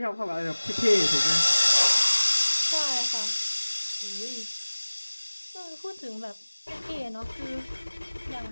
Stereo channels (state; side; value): inverted; both; correlation -1.00